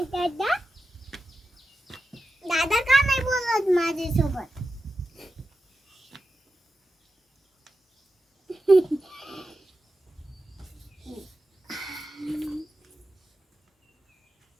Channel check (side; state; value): both; normal; correlation 0.91